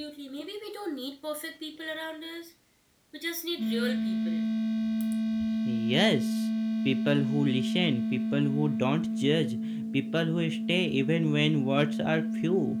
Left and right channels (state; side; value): identical; both; correlation 1.00